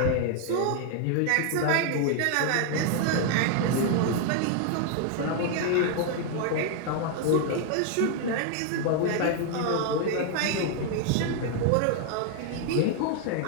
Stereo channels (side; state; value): both; different; correlation 0.00